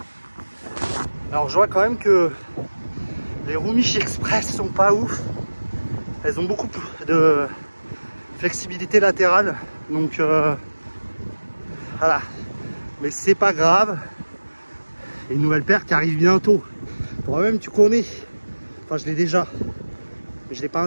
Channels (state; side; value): inverted; both; correlation -1.00